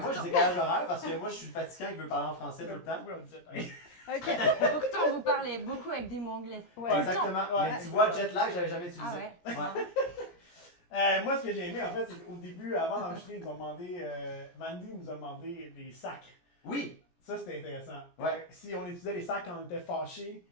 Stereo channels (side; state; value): right; late; 17 ms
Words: je dis décalage horaire parce que moi, je suis le fatigant qui veut parler en français tout le temps. Oui, on dit jet lag. Ok. Pourtant, vous parlez beaucoup avec des mots anglais. Ouais. Ouais, exactement. Ouais, Mais tu c'est vois, ça. jet lag, j'avais jamais utilisé. Ah ouais? Ouais. Moi, ce que j'ai aimé, en fait, c'est qu'au début, avant d'enregistrer, ils nous ont demandé, Mandy nous a demandé des sacs. Oui. Ça, c'était intéressant. Ouais. Si on utilisait les sacs quand on était fâché